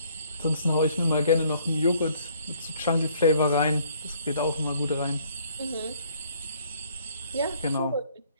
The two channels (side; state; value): both; inverted; correlation -0.62